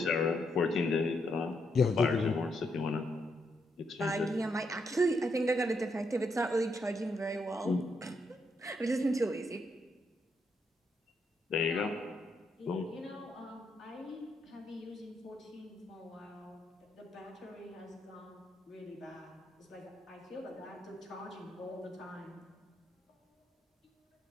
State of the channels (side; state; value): both; normal; correlation 0.78